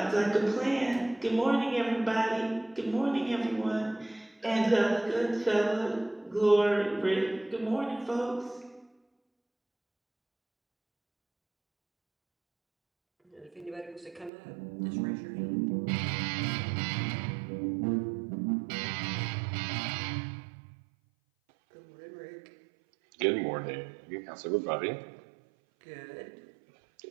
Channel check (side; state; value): left; drops out; at 14.3 s